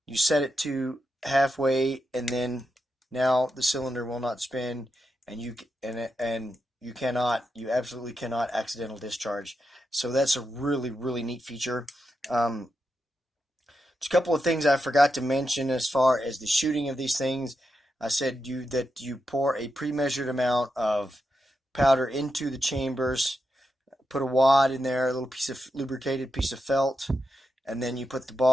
You set it to halfway, and then now the cylinder will not spin, and you absolutely cannot accidental discharge. So that's a really, really neat feature. Just a couple of things I forgot to mention as far as the shooting of these things. I said that you pour a pre-measured amount of powder into the chambers, put a wad in there, a little piece of lubricated piece of felt, and then you put the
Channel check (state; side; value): normal; both; correlation 0.87